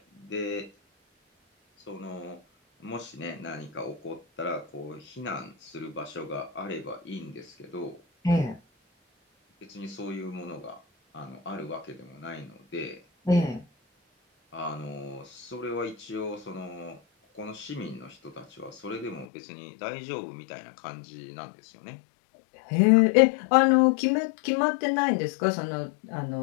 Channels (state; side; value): drops out; right; at 19.2 s